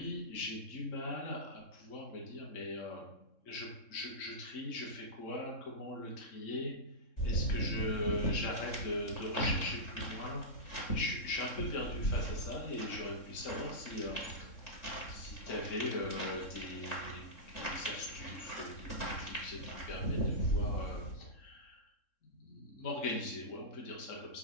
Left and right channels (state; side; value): late; right; 3.7 ms